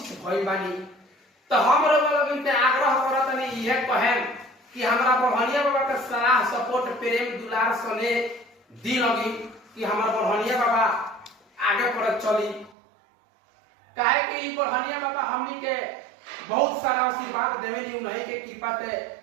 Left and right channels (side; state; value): left; drops out; at 12.8 s